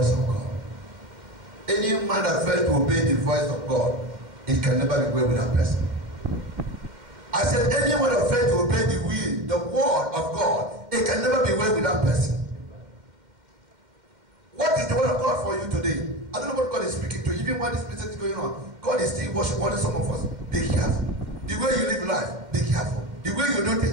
of God. Any man that fails to obey the voice of God, it can never be well with that person. I said, anyone that fails to obey the will, the word of God, it can never be well with that person. What is the word of God for you today? I don't know what God is speaking to. Even while this message is going on, God is still warning some of us. Be careful. The way you live life, be careful. The way you do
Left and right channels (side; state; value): left; late; 2.1 ms